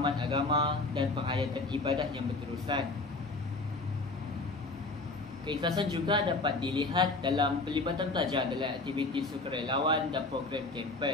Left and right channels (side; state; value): right; quieter; 3.3 dB